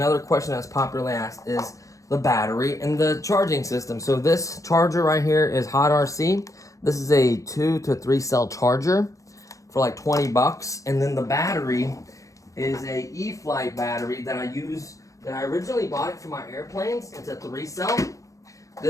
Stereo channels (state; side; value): late; right; 0.16 ms